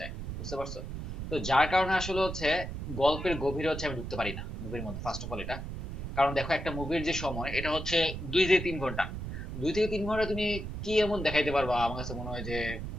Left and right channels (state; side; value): noise; right; rumble, 6 dB below the sound